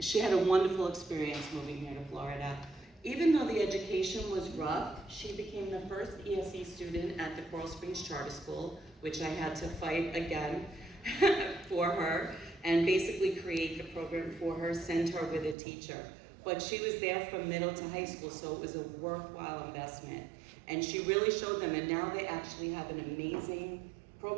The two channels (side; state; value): left; drops out; at 15.6 s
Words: wonderful experience moving here to Florida. Even though the education was rough, she became the first ESE student at the Coral Springs Charter School, which I had to fight again for her, and basically create the program for her, send her with a teacher. But she was there from middle to high school, so it was a worthwhile investment. And she really showed them, and now they actually have an amazing